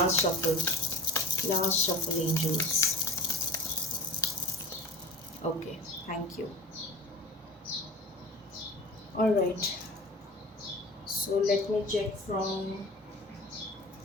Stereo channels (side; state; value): both; normal; correlation 0.37